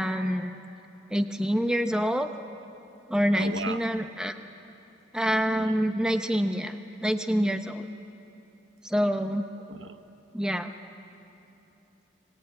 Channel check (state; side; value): normal; both; correlation 0.91